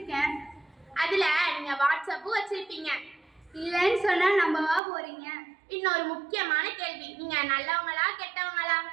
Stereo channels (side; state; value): left; drops out; at 4.8 s